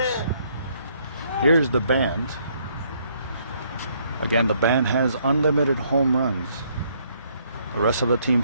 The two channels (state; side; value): inverted; both; correlation -0.68